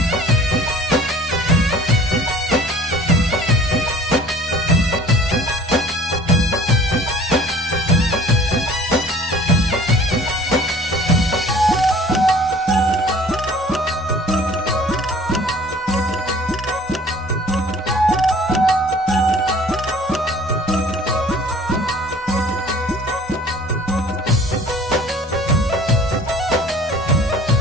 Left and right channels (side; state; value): both; normal; correlation 0.49